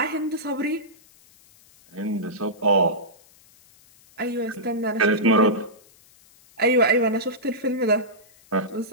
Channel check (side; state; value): left; noise; hiss, 28 dB below the sound